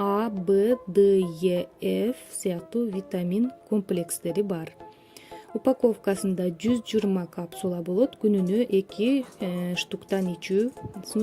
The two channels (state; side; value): identical; both; correlation 1.00